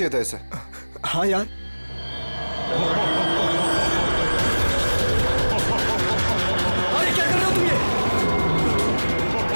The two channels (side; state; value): both; inverted; correlation -1.00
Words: था इसे। हाँ यार, अरे क्या कर रहे हो तुम? ये